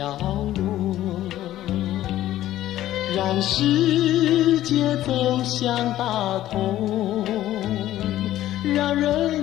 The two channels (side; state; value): right; quieter; 13.7 dB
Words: 落，让世界走向大同，让